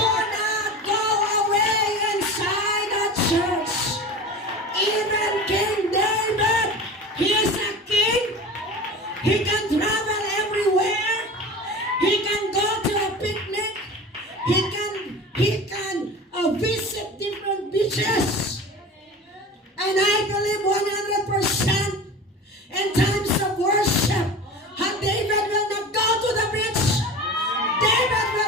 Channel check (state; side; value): normal; both; correlation 0.34